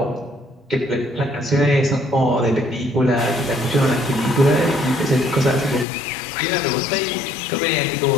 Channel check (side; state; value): right; drops out; at 5.9 s